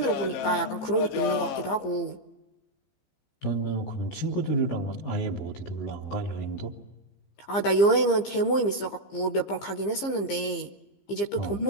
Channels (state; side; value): late; right; 15 ms